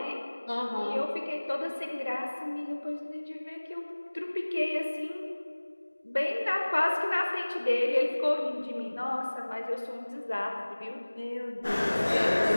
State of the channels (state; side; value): inverted; both; correlation -1.00